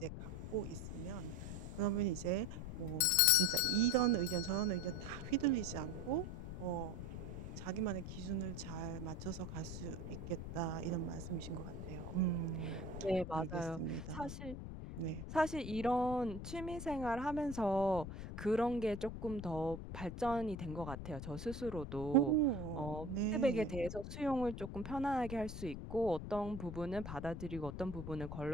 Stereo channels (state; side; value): noise; left; rumble, 8 dB below the sound